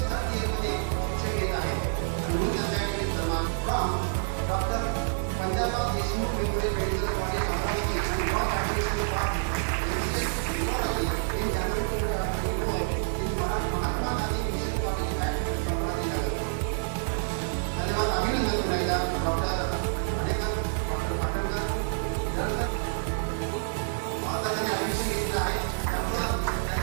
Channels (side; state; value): left; silent; digital silence